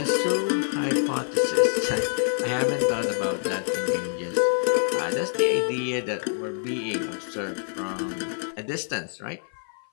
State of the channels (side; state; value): right; silent; 56 dB below the other